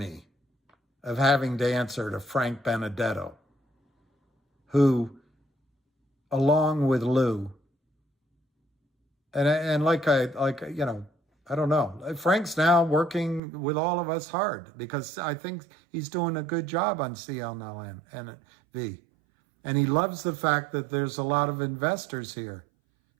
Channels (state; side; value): drops out; left; at 13.4 s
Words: of having to answer to Frank Benedetto, who, along with Lou, and I don't know. Frank's now working with all of us hard because I think he's doing a good job on CNLV. And he loves the fact that there's a lot of investors here